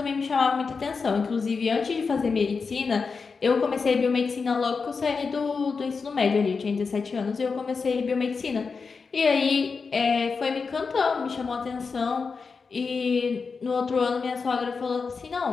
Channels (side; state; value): right; quieter; 4.9 dB